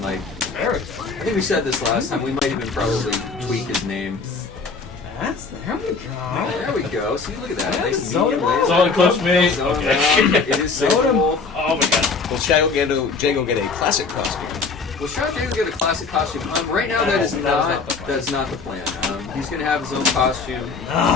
like I think we said this last time. We might even probably tweak his name. There we go. There we go. See, look at that. Nice Soda medium Malt. laser. Solid close me. Soda Okay. Malt. It is Soda Wolf. Oh my god. Will Shadow Jago get a classic costume? Well, Shadow Jago get a classic costume. Right now, that's not the plan. He's going to have his own costume.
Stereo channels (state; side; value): quieter; right; 4.5 dB